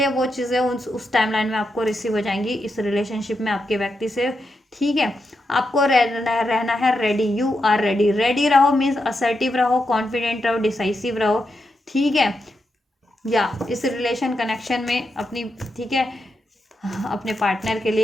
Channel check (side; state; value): both; normal; correlation 0.85